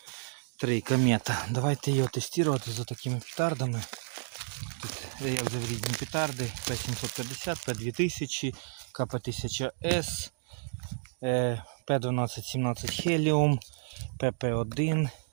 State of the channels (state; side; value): silent; left; digital silence